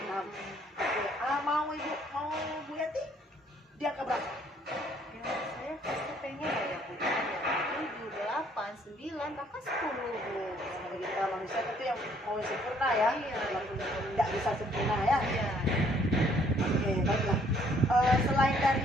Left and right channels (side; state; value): both; normal; correlation 0.64